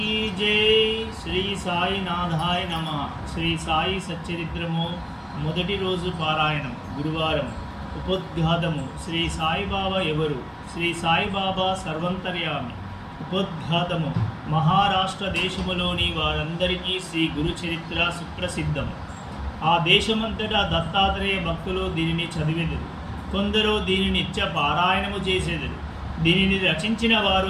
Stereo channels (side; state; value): both; identical; correlation 1.00